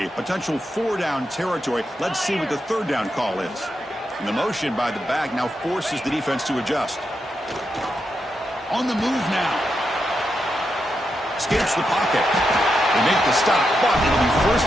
Potential 4-down territory. Let's see what the 3rd down call is. And the motion by the back now forces the defense to adjust. On the move now. Escapes the pocket. They make the stop, but it'll be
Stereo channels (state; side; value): normal; both; correlation 0.85